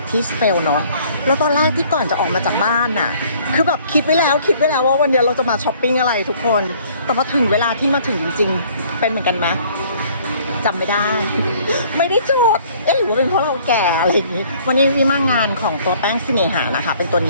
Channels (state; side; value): inverted; both; correlation -0.57